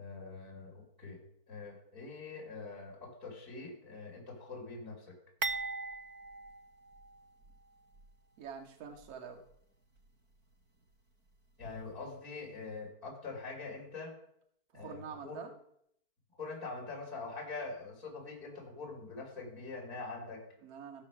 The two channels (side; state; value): left; late; 4.5 ms